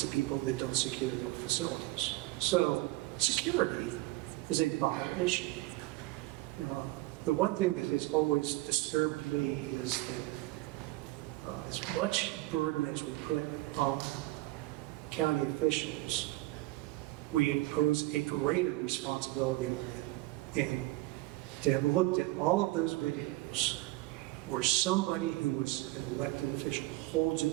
of people that don't secure their facilities. So security is a vital issue. The one thing that has always disturbed me is that as much burden as we put on county officials, we impose a greater responsibility on them. And to have looked at all of those videos where somebody who was an elected official holds a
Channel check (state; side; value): quieter; left; 19.5 dB